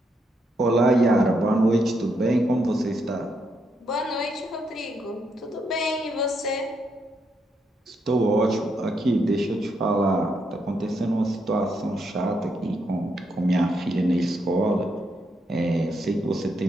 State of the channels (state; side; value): normal; both; correlation 0.78